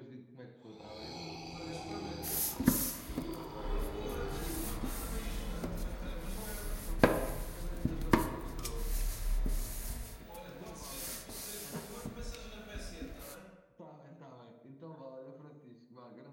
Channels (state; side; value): identical; both; correlation 1.00